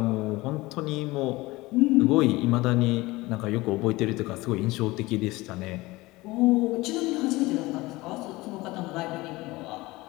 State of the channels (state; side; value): quieter; right; 20.6 dB